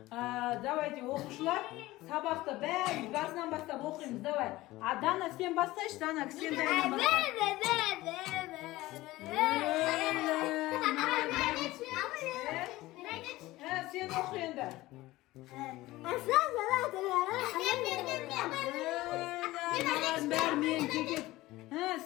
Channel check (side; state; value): right; quieter; 18.2 dB